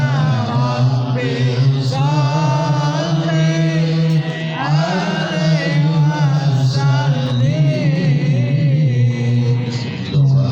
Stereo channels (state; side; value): identical; both; correlation 1.00